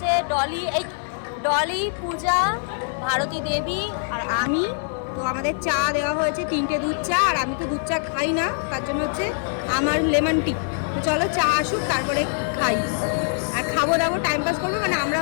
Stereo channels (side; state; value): right; silent; digital silence